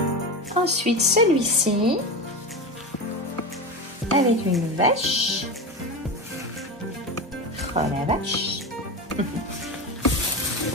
Ensuite, celui-ci, avec une vache. Oh la vache!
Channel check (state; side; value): normal; both; correlation 0.22